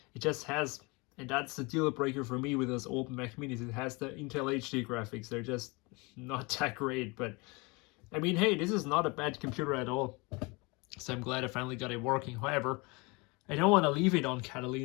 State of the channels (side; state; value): right; quieter; 27.2 dB